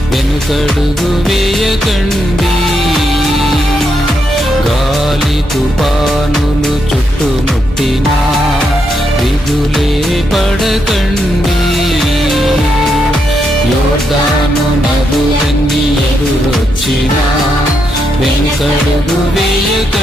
వెనుకడుగు వేయకండి, గాలి తుఫానులు చుట్టుముట్టినా దిగులే పడకండి. యోర్దాను నదులన్నీ ఎదురొచ్చినా వెనుకడుగు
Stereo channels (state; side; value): normal; both; correlation 0.80